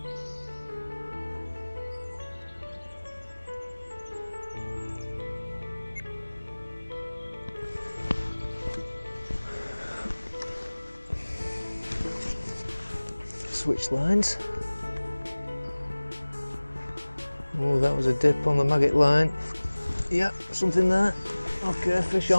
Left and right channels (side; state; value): both; inverted; correlation -1.00